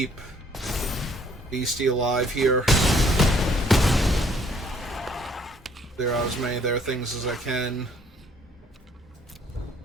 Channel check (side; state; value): both; normal; correlation 0.62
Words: Beastie alive here. Clear out as many of their things as I can.